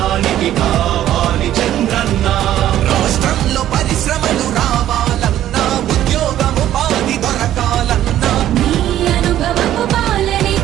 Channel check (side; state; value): left; quieter; 12.3 dB